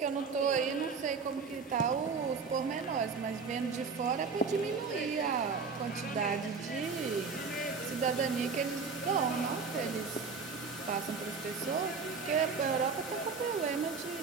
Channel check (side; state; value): left; quieter; 5.0 dB